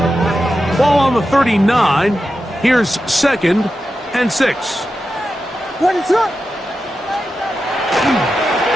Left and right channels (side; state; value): both; normal; correlation 0.90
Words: Ball on the 39. Here's 2nd and 6. What is up?